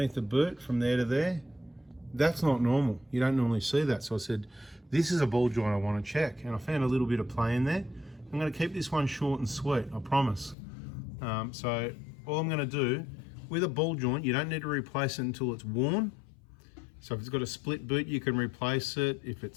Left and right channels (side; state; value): right; drops out; at 10.6 s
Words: the boot from there to there. That's not normal. You don't normally see that. So I said, this is a ball joint I want to check. And I found a little bit of play in there. I'm going to keep this one short and sweet, I promise. So all I'm going to do, with a ball joint, you don't need to replace it until it's worn. So if it's got a split boot, you can replace it. If